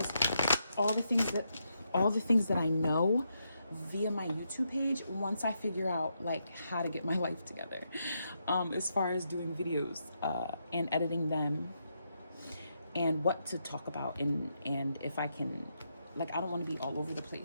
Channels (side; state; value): both; inverted; correlation -0.81